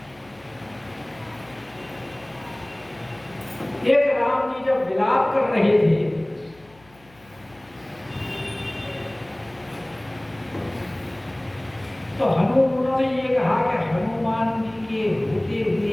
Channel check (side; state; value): left; noise; hum, 27 dB below the sound